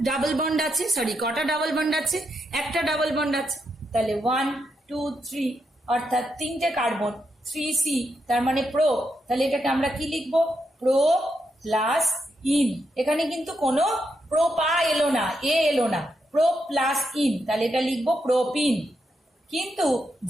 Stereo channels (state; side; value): normal; both; correlation 0.82